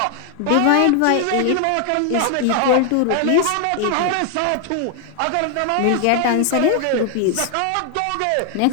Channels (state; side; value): different; both; correlation 0.00